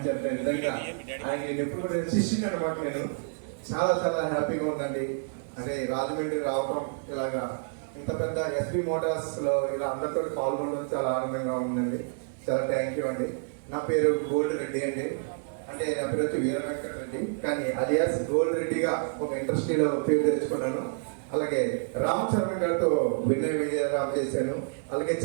నిజంగా ఆయన నేను ఎప్పుడు కూడా శిష్యుని అనమాట. నేను చాలా చాలా హ్యాపీగా ఉందండి. అంటే రాజమండ్రి రావటం, ఇలాగా ఇంత పెద్ద ఎస్బీ మోటార్స్ లో ఇలా అందరితో పాల్గొనడం చాలా ఆనందంగా ఉందండి. చాలా థ్యాంక్ యూ అండి. నా పేరు గోల్డ్ రెడ్డి అండి. అంటే నా పేరు వచ్చి వీర వెంకట రెడ్డి, కానీ అలియాస్ గోల్డ్ రెడ్డిగా ఒక ఇండస్ట్రీలో పేరు తెచ్చుకున్నాను. అలాగే రామ్ చరణ్ గారితో వినయ విజయరామ్ చేశాను. అలాగే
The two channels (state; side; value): silent; left; digital silence